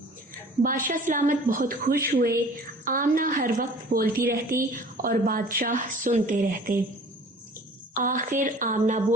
बादशाह सलामत बहुत खुश हुए। आमना हर वक्त बोलती रहती और बादशाह सुनते रहते। आखिर आमना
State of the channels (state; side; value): normal; both; correlation 0.47